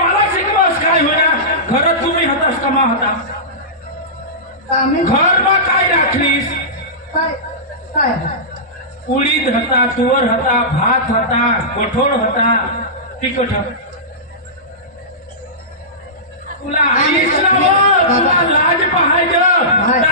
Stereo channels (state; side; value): normal; both; correlation -0.18